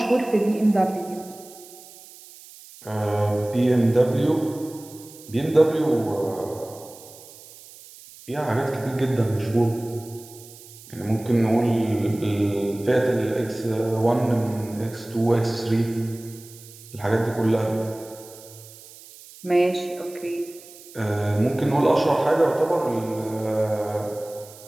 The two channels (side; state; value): right; noise; hiss, 20 dB below the sound